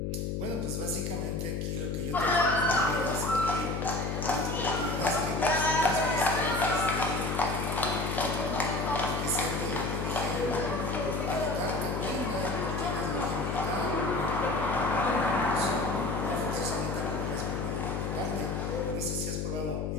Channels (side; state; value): left; noise; hum, 1 dB below the sound